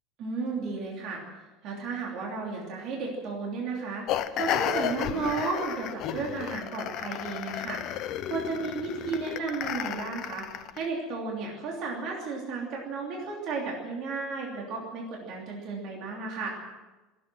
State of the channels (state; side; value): normal; both; correlation 0.36